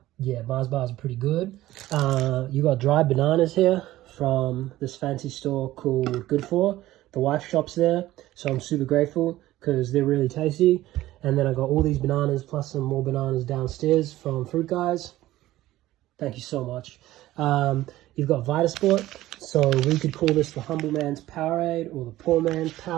Yeah, Mars bars are pretty good. You got dried bananas here from this fancy store called Good For. The wife shops there, so I'm super grateful because they're really tasty. And then I got all these bananas plus some more bananas downstairs from Fruit Guys. Thank you so much. You've got Vitasport, so we could call this the humble man's Powerade or the poor man's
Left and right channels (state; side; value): quieter; left; 15.7 dB